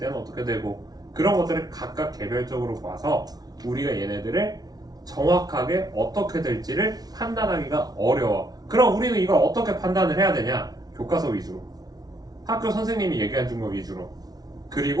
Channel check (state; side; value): late; left; 0.19 ms